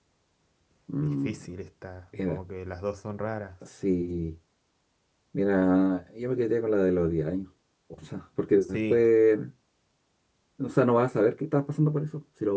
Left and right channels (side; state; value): both; identical; correlation 1.00